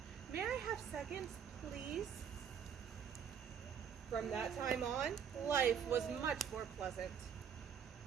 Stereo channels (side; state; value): left; quieter; 7.8 dB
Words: May I have seconds, please?" From that time on, life was much more pleasant.